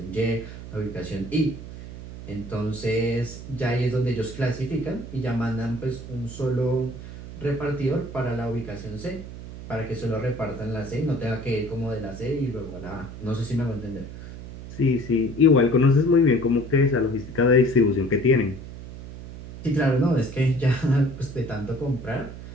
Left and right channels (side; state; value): right; noise; hum, 12 dB below the sound